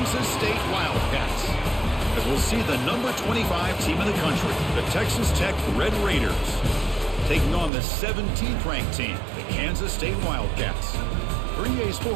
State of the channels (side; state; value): left; drops out; at 7.7 s